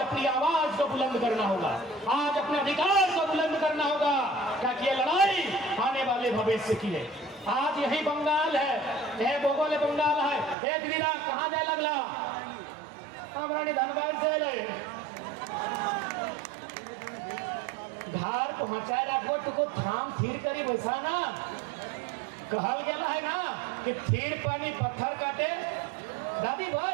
आवाज को बुलंद करना होगा, आज अपने अधिकार को बुलंद करना होगा, ताकि ये लड़ाई आने वाले भविष्य की है। आज यही बंगाल है, यह भोगोले बंगाल है। एक दिन कहाँ जाए लगला हमारा धनबाद से ले घर पहुंचाए रखो तो थाम थीर करी वैसा ना कहल गया है ना कि थीर पानी पत्थर काटे। दादी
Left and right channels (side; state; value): left; drops out; at 10.6 s